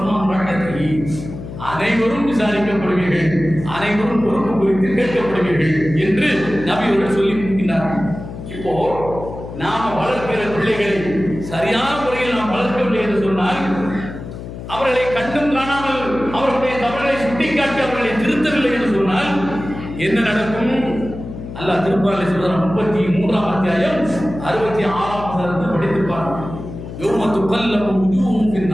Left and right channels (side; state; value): left; noise; hum, 11 dB below the sound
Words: ரஹ்மதி. அனைவரும் விசாரிக்கப்படுவீர்கள், அனைவரும் பொறுப்பு குறித்து கேட்கப்படுவீர்கள் என்று நபி அவர்கள் சொல்லி இருக்கின்றார்கள். இப்போ நாம வளர்க்கிற பிள்ளைகளை சரியான முறையில் நாம் வளர்க்கவில்லை என்று சொன்னால், அவர்களை கண்டும் காணாமல் அவர்களுடைய தவறுகளை சுட்டிக்காட்டி அவர்களை திருத்தவில்லை என்று சொன்னால் என்ன நடக்கும்? அல்லாஹ் திருக்குர்ஆனில் சொல்றான், 33ஆம் அத்தியாயம் 66ஆம் வசனத்தை படித்திருப்பார். யௌம துகல்லபு wujuhum